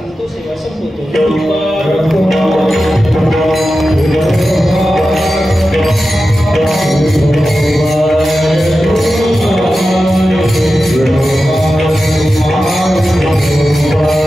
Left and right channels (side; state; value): both; normal; correlation 0.92